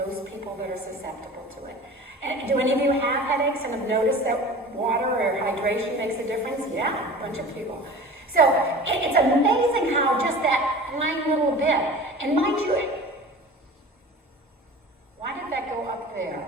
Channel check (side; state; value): both; normal; correlation 0.39